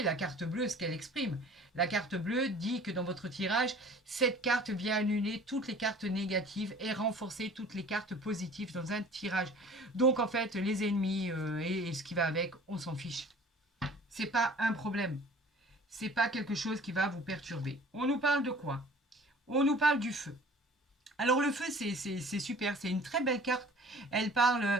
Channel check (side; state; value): both; normal; correlation 0.47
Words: la carte bleue, ce qu'elle exprime. La carte bleue dit que dans votre tirage, cette carte vient annuler toutes les cartes négatives et renforcer toutes les cartes positives dans un tirage. Donc en fait, les ennemis et ce qui va avec, on s'en fiche. C'est pas un problème. C'est pas quelque chose qui va vous perturber. On nous parle de quoi? On nous parle du feu. Alors le feu, c'est super, c'est une très belle carte. Elle